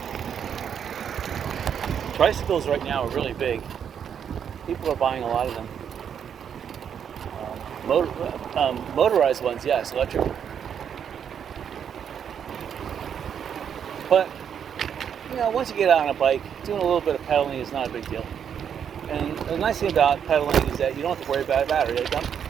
Tricycles right now are really big. People are buying a lot of them. Motorized ones, yes, electric. But you know, once you get out on a bike, doing a little bit of pedaling is not a big deal. And the nice thing about pedaling is that you don't have to worry about a battery. Like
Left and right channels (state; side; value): quieter; left; 8.1 dB